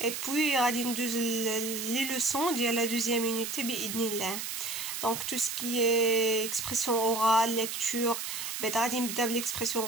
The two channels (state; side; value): noise; right; hiss, 5 dB below the sound